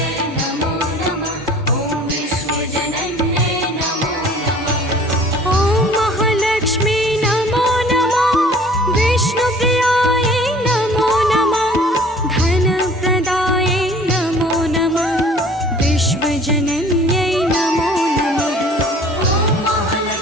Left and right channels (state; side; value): normal; both; correlation 0.50